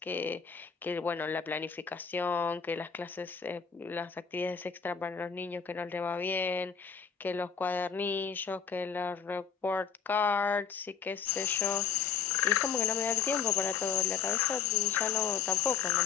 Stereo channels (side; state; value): right; quieter; 6.9 dB